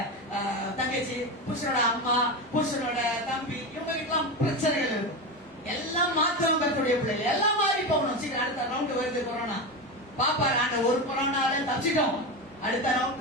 தங்கச்சி, புருஷனோட அம்மா, புருஷனோட தம்பி, இவங்க கிட்டலாம் பிரச்சனைகள் இருக்கும். எல்லாம் மாத்தவங்க கர்த்தருடைய பிள்ளைகள் எல்லாம் மாறி போகணும். சீக்கிரம் அடுத்த ரவுண்ட் வருது கொரோனா. பாப்பா நாங்க ஒரு கொரோனால தப்பிச்சிட்டோம், அடுத்த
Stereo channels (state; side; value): normal; both; correlation 0.19